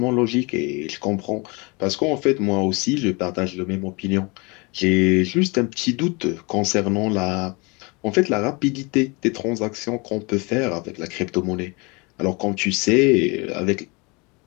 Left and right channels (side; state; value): right; quieter; 28.1 dB